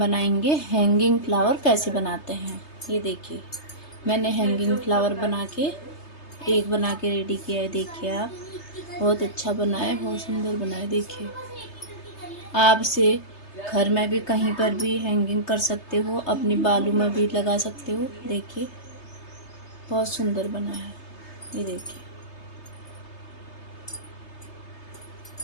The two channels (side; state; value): right; late; 3.3 ms